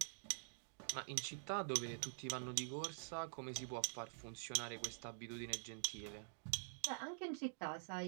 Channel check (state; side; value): silent; left; digital silence